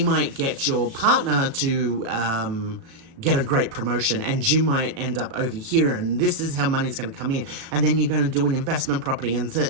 might get your partner to get a great promotion, and you might end up over here, and this is how money's going to come in, and then you're going to do an investment property and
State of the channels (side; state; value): left; late; 36 ms